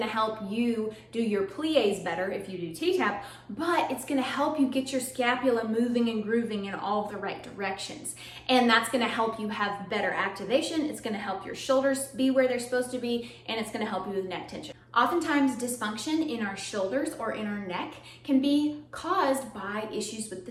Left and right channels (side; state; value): both; identical; correlation 1.00